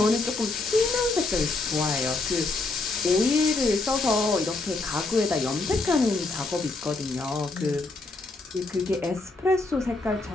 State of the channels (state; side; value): quieter; right; 3.4 dB